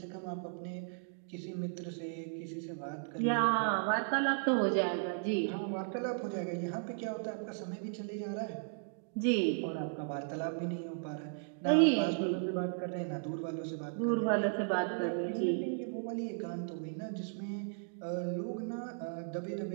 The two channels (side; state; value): left; silent; digital silence